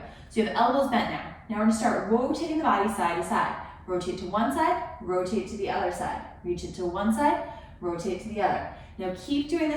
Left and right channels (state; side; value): identical; both; correlation 1.00